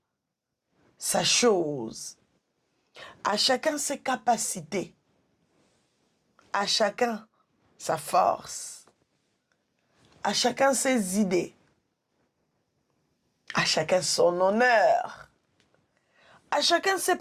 sa chose. À chacun ses capacités. À chacun sa force. À chacun ses idées. À chacun son honneur. À chacun ses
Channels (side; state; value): both; identical; correlation 1.00